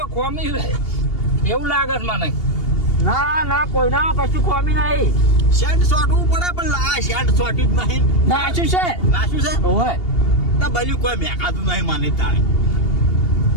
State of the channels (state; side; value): late; right; 2.8 ms